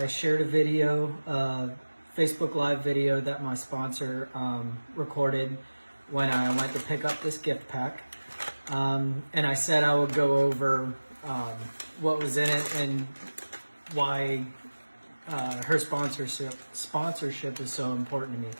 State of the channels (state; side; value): inverted; both; correlation -1.00